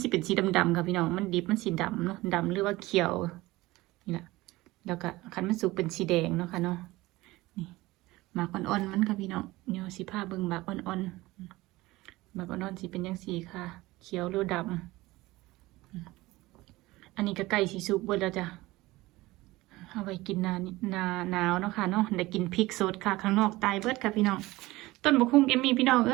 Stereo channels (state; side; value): quieter; left; 19.4 dB